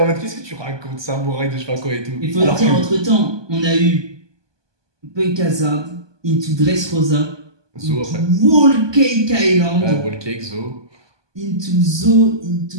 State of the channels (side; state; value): left; late; 1.2 ms